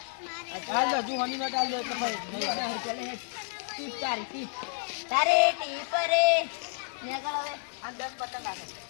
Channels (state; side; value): silent; right; digital silence